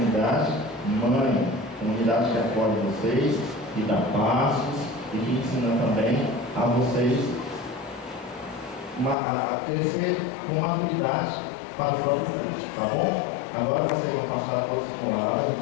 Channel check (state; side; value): drops out; right; at 9.2 s